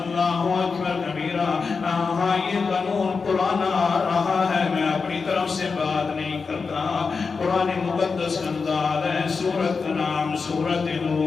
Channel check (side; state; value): right; quieter; 4.9 dB